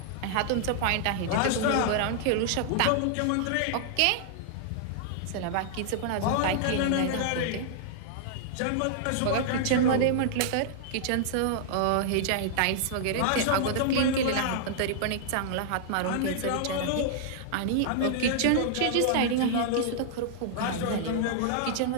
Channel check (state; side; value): different; both; correlation -0.01